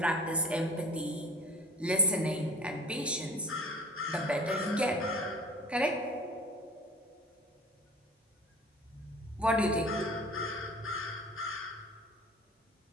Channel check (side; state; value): both; normal; correlation 0.40